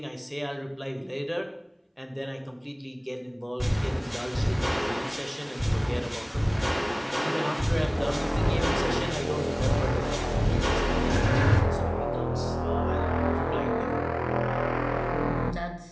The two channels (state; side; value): identical; both; correlation 1.00